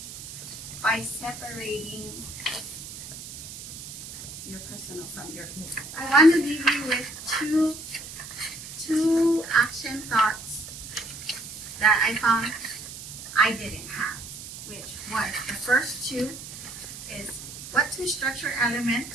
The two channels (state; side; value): noise; right; hiss, 11 dB below the sound